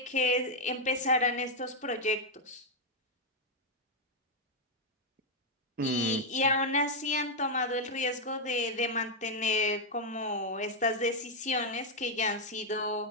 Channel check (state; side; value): normal; both; correlation -0.01